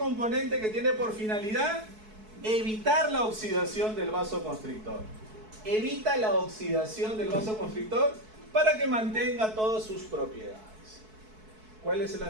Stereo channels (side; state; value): left; late; 4.6 ms